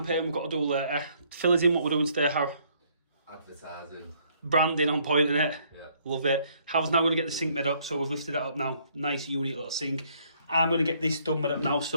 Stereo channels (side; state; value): both; inverted; correlation -0.66